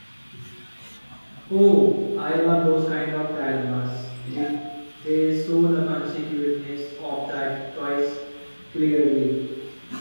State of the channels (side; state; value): both; inverted; correlation -1.00